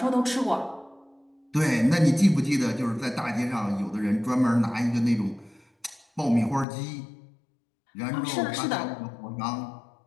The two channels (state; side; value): drops out; right; at 6.7 s